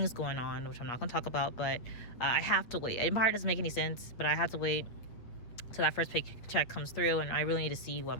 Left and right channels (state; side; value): late; right; 8.2 ms